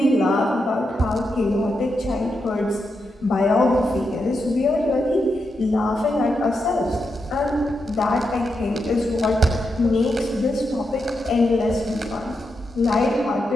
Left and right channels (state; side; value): normal; both; correlation 0.85